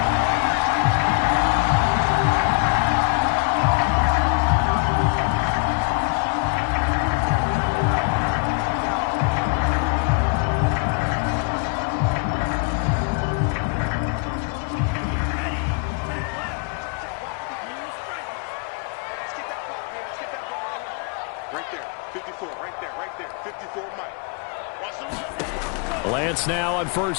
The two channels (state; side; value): quieter; right; 35.1 dB